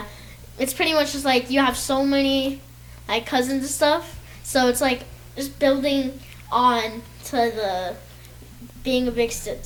It's pretty much just like you have so many like cousins and stuff. So it's like just building on to the being a big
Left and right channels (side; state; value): both; identical; correlation 1.00